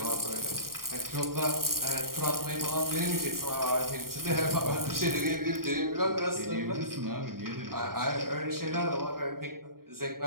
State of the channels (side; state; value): left; late; 0.92 ms